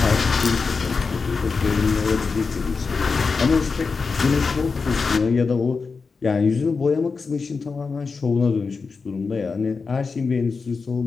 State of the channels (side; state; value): right; quieter; 4.7 dB